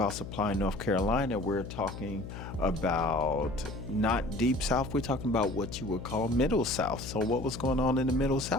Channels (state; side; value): noise; left; hum, 10 dB below the sound